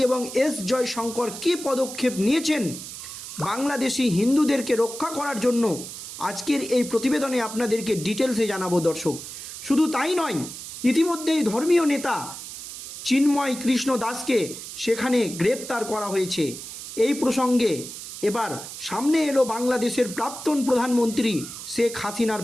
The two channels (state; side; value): noise; right; hiss, 10 dB below the sound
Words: এবং এস জয়শঙ্কর কী পদক্ষেপ নিয়েছেন বাংলাদেশি হিন্দুদেরকে রক্ষা করার জন্য, আজকের এই প্রতিবেদনে আপনাদেরকে ডিটেলসে জানাবো দর্শক। শুধু তাই নয়, ইতিমধ্যেই ধর্মীয় নেতা চিন্ময় কৃষ্ণ দাসকে সেখানে গ্রেপ্তার করা হয়েছে। এই প্রসঙ্গে এবার সামনে এলো বাংলাদেশের প্রাক্তন প্রধানমন্ত্রী শেখ হাসিনার